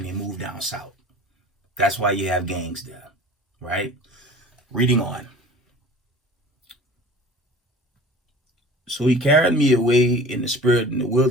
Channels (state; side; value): normal; both; correlation 0.42